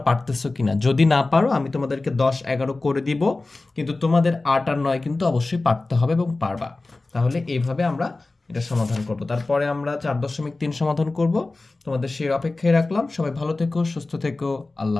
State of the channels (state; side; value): quieter; right; 3.3 dB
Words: পারতেছো কিনা, যদি না পারো আমি তোমাদেরকে 10 11 করে দিব, কিন্তু তোমাদের 8 আর 9 কিন্তু অবশ্যই পারতে হবে এবং পারবা। তাহলে এইভাবে আমরা এটা সমাধান করব, তারপরে আমরা 4.3 সমাধান করব। তোমাদের সেই অপেক্ষায় রাখলাম। সবাই ভালো থেকো, সুস্থ থেকো,